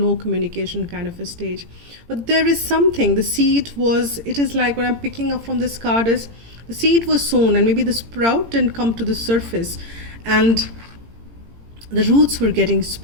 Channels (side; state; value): left; late; 18 ms